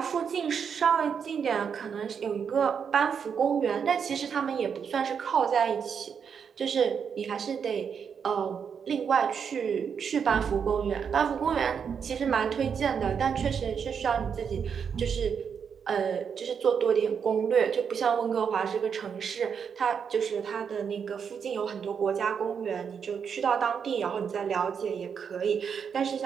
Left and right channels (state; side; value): quieter; left; 6.9 dB